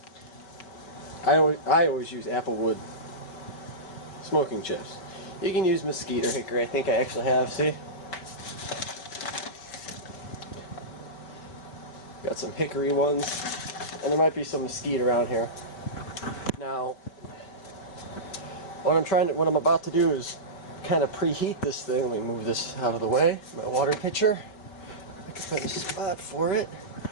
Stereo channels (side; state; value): right; late; 5.2 ms